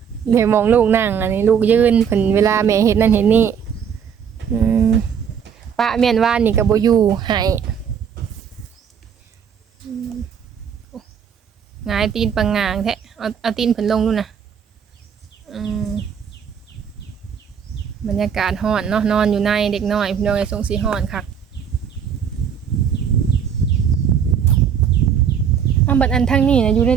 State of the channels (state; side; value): quieter; left; 7.7 dB